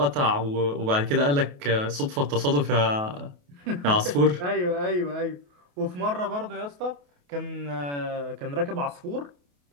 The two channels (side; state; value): left; late; 28 ms